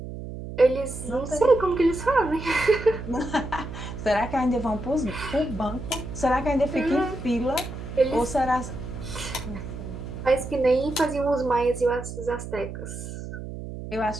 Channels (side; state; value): right; noise; hum, 9 dB below the sound